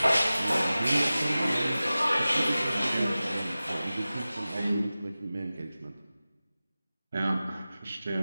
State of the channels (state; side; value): inverted; both; correlation -0.96